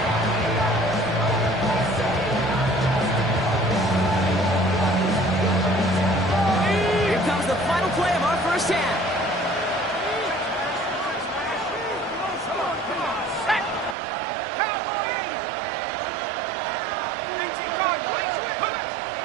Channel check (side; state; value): left; drops out; at 14.0 s